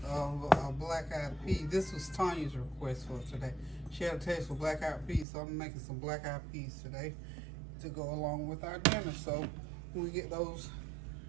of black-eyed peas. This was Tanya's request for today. She had a taste for black-eyed peas, so I'm making some black-eyed peas today to go along with our dinner. So when we get those,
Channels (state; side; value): drops out; left; at 5.2 s